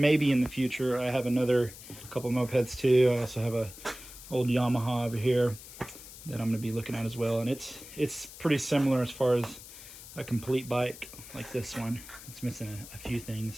in the future I have another couple mopeds too. I also have a old Yamaha over here that I'm going to be looking at as well, and it's pretty similar as far as a complete bike like this one. It's missing a few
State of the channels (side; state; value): left; noise; hiss, 16 dB below the sound